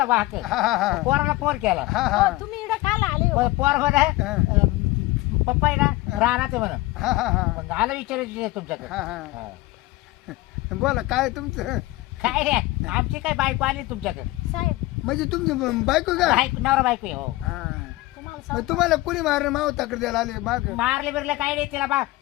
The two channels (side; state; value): right; quieter; 19.3 dB